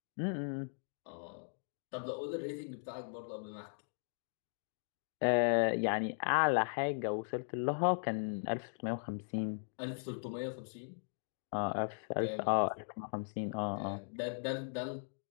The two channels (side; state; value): right; silent; digital silence